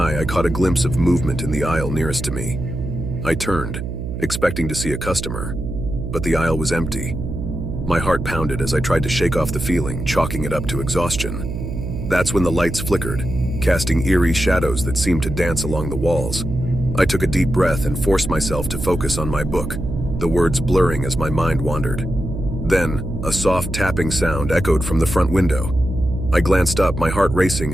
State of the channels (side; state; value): right; noise; hum, 6 dB below the sound